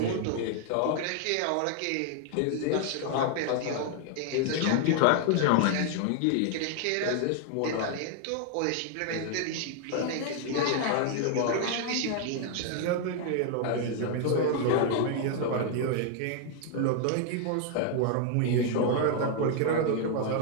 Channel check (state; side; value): different; both; correlation 0.00